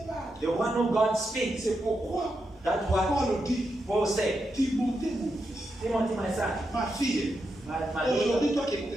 parle. the one who God speaks, C'est pourquoi that's what Paul dit, Paul said. Timothée mon fils, Timothy, my son, ma fille, my daughter, aujourd'hui toi qui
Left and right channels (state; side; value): normal; both; correlation 0.85